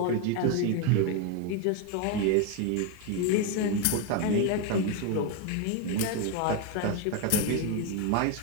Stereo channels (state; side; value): different; both; correlation 0.02